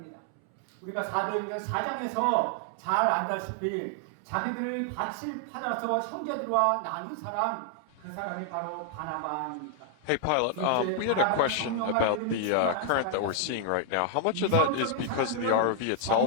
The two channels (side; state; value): both; different; correlation 0.00